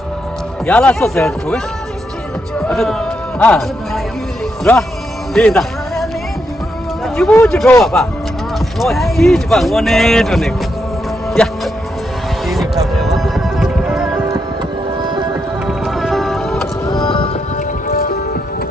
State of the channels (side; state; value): both; normal; correlation 0.81